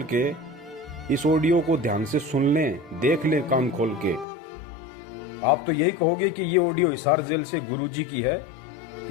के इस ऑडियो को ध्यान से सुन लें, देख लें कान खोल के। आप तो यही कहोगे कि ये ऑडियो हिसार जेल से गुरुजी की है,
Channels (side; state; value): right; drops out; at 4.2 s